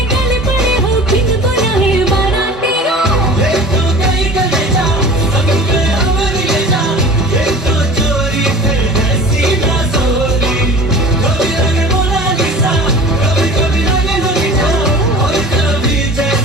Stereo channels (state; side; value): normal; both; correlation 0.40